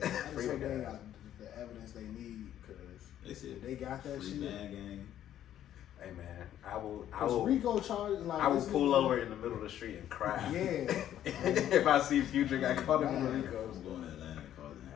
I Free just the hope they guys. got the evidence they need because They said they got that free shit. man gang. Hey man, I will RICO charges like I will pull over in the middle of the street and cry. Yeah. If I see Future got caught in the RICO. I'm going to Atlanta and causing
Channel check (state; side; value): quieter; right; 11.3 dB